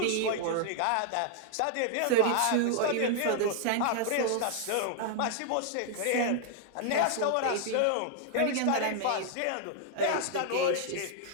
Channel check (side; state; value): both; different; correlation 0.00